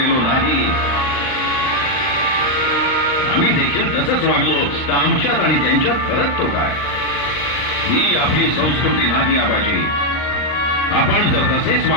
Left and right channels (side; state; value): right; late; 39 ms